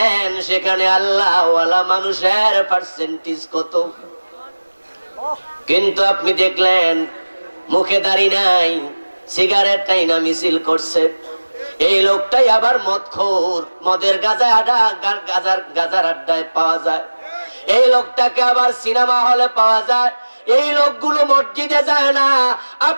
সেখানে আল্লাহওয়ালা মানুষের পার্সেন্টেজ কত? কিন্তু আপনি দেখলেন মুখে দাড়ি নাই, সিগারেট টাইনা মিছিল করছে, এই লোকটাই আবার মদখোর, মদের গাজার আড্ডায় পাওয়া যায়, এই লোকটাকে আবার সিনেমা হলে পাওয়া যায়, এই লোকগুলো মসজিদে যায় না।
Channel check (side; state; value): both; inverted; correlation -1.00